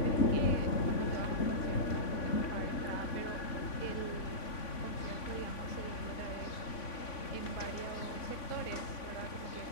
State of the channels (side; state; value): right; late; 3.5 ms